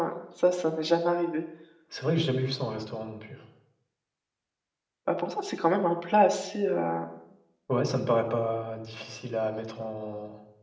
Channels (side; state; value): both; identical; correlation 1.00